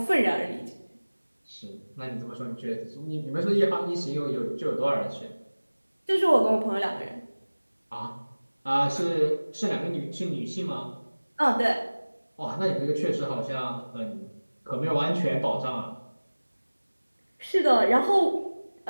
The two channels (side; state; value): both; inverted; correlation -1.00